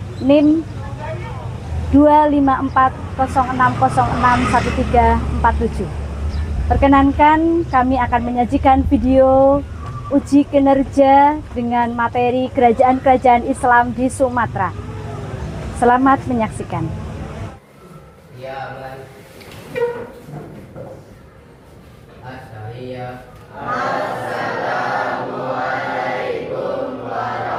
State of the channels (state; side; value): identical; both; correlation 1.00